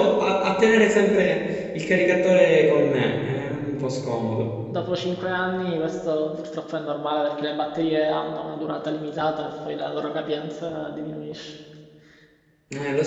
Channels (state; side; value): identical; both; correlation 1.00